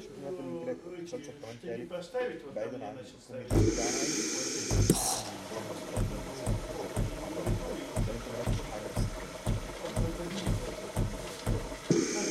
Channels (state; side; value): identical; both; correlation 1.00